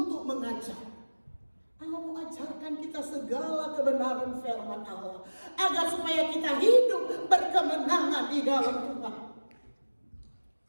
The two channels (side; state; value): both; inverted; correlation -1.00